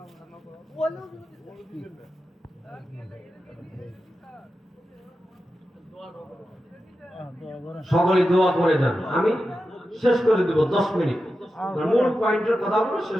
সকলে দোয়া করে যান, আমি শেষ করে দেব 10 মিনিট, মূল পয়েন্টের কথাগুলো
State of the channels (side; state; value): both; normal; correlation 0.91